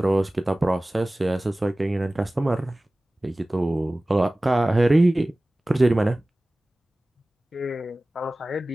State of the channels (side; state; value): both; normal; correlation 0.98